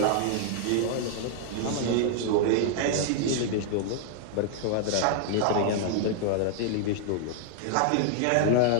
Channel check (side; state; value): both; different; correlation 0.00